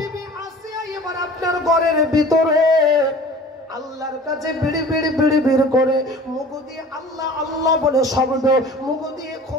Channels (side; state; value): both; normal; correlation 0.44